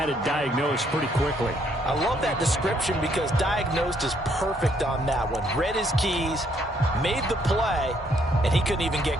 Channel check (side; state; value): both; normal; correlation 0.69